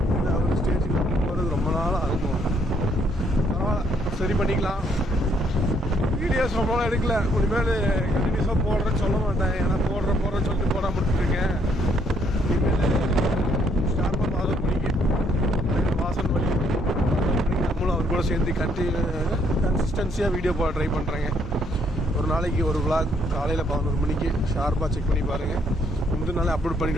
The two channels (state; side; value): normal; both; correlation 0.69